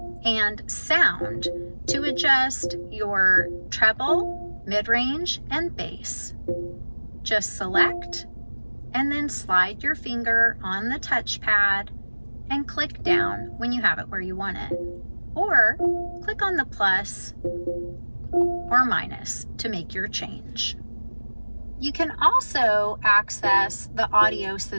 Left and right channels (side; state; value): both; inverted; correlation -1.00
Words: and sound to adjust your treble, mid-range, and bass. Just select and then slide your finger on the touchpad and click down when you have it where you want it. Or click on the plus or minus to make your change. You can also access the audio